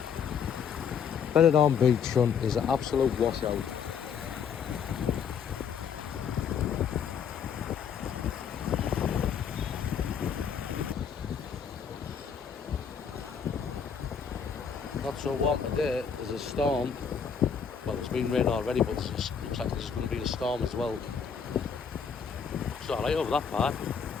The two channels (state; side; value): quieter; right; 6.9 dB